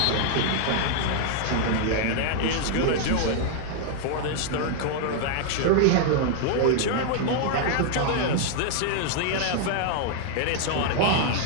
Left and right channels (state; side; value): different; both; correlation 0.00